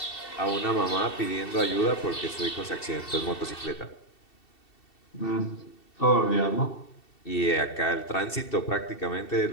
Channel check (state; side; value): late; right; 2.7 ms